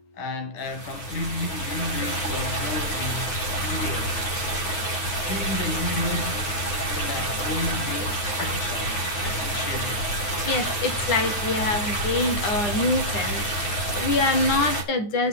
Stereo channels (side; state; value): right; late; 9.5 ms